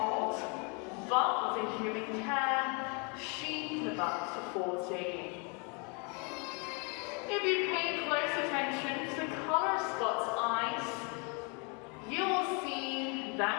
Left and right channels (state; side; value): quieter; right; 34.3 dB